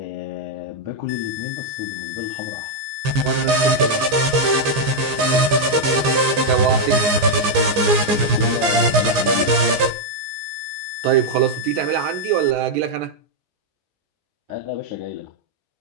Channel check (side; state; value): left; late; 15 ms